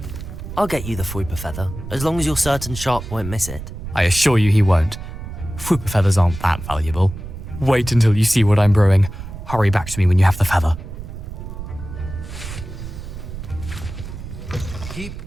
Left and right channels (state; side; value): noise; right; rumble, 10 dB below the sound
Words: I'll get you the Fwooper feather, as long as you're certain Sharp won't miss it. I assure you he won't. Fwooper feathers aren't that valuable. Wait until you see what I'm brewing. Hurry back to me when you have the feather. Keep